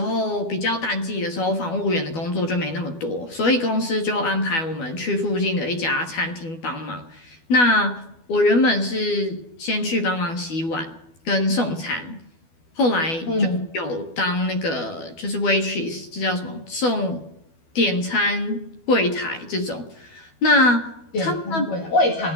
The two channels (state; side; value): late; right; 12 ms